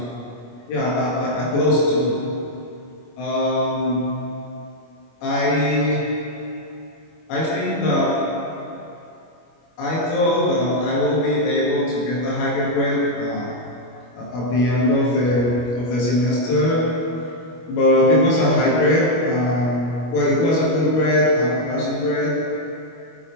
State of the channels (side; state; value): right; late; 25 ms